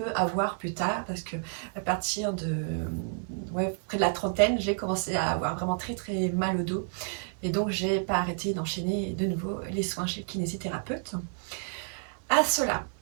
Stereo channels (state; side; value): silent; left; 58 dB below the other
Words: avoir plus tard parce que à partir de près de la trentaine, j'ai commencé à avoir vraiment très très mal au dos et donc j'ai pas arrêté d'enchaîner de nouveau les soins chez le kinésithérapeute. À cela,